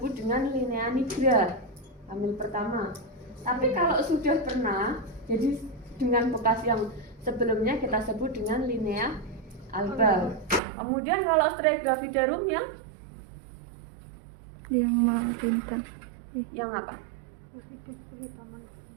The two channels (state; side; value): drops out; left; at 10.6 s